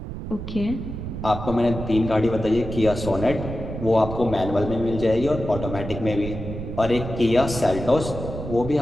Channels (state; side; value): noise; right; rumble, 7 dB below the sound